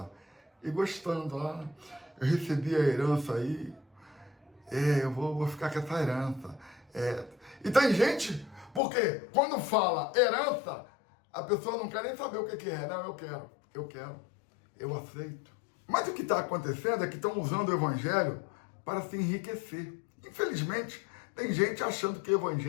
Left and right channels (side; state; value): right; drops out; at 8.8 s